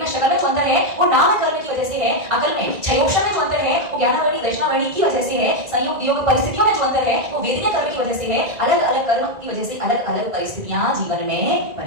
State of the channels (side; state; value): left; late; 1.9 ms